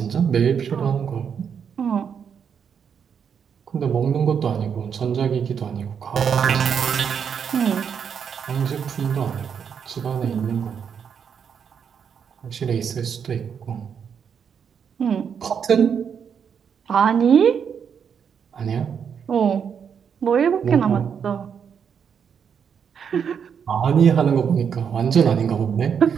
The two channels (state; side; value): quieter; left; 7.3 dB